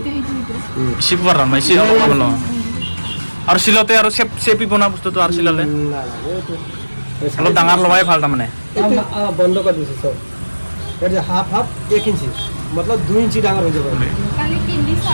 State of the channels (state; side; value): inverted; both; correlation -1.00